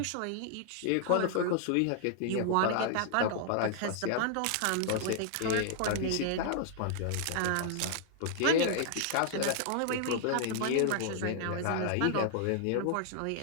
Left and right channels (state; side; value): different; both; correlation -0.01